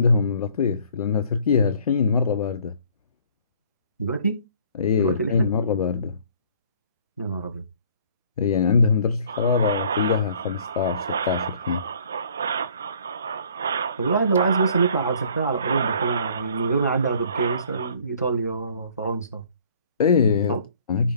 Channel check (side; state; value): both; inverted; correlation -0.57